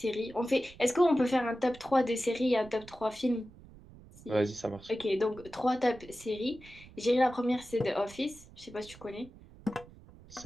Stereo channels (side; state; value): right; noise; rumble, 21 dB below the sound